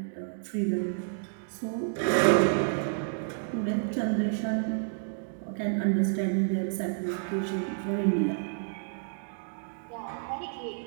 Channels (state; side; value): silent; left; digital silence